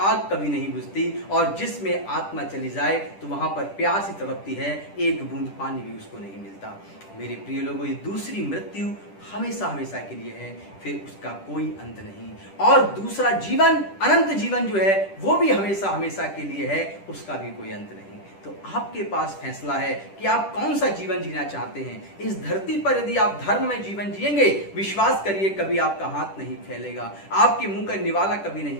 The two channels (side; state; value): right; late; 10 ms